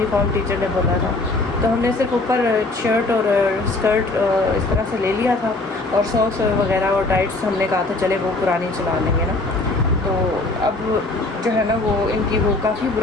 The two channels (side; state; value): right; quieter; 3.1 dB